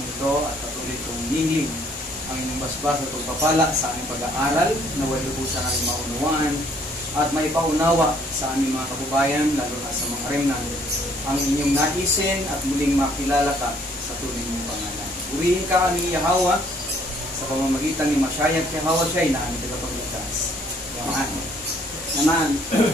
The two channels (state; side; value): normal; both; correlation 0.63